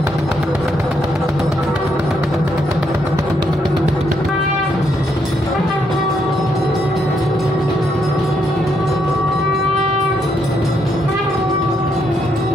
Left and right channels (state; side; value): normal; both; correlation 0.76